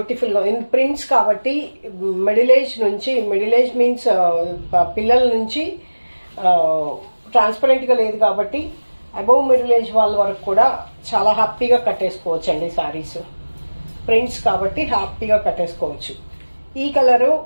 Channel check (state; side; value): inverted; both; correlation -1.00